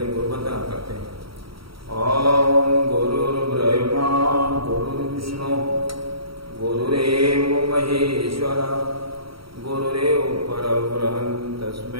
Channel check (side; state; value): left; late; 0.75 ms